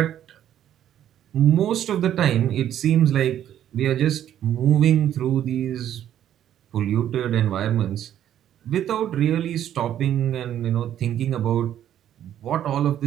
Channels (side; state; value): left; quieter; 10.9 dB